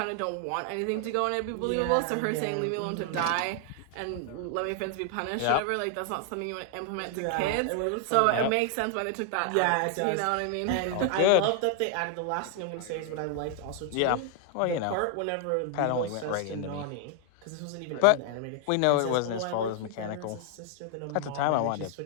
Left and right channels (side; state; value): both; different; correlation 0.00